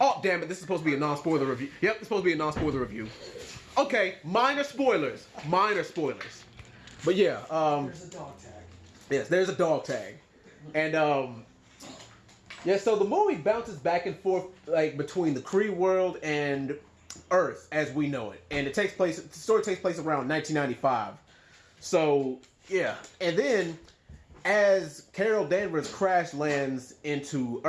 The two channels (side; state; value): both; identical; correlation 1.00